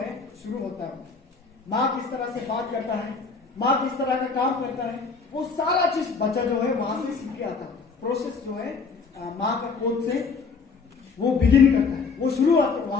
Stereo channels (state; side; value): quieter; right; 4.8 dB